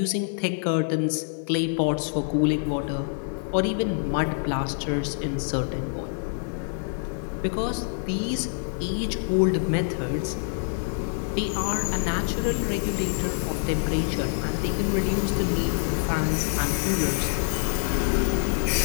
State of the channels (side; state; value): right; silent; 60 dB below the other